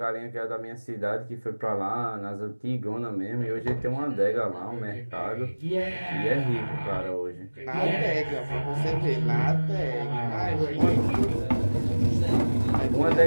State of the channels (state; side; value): inverted; both; correlation -1.00